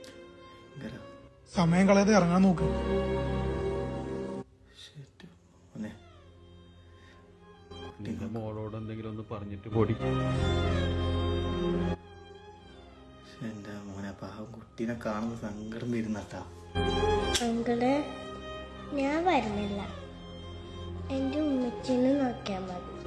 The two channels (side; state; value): both; identical; correlation 1.00